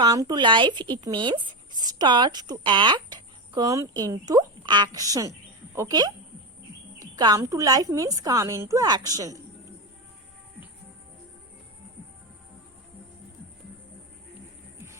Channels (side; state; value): both; normal; correlation 0.14